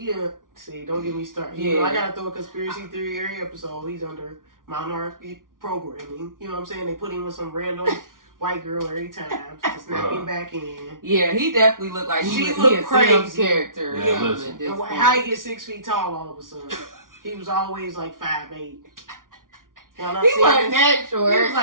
see, don't get me started. Yeah. I got to throw a conspiracy theory every episode. He's under minority programming. You know what I'm saying? They put him with some random... white girl every time to snap him back in. Yeah, he definitely looked like he a crazy character. Yeah, how he get 6 feet tall all of a sudden? He was always like 5'8". He wasn't that short. He was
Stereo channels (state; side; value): late; left; 0.89 ms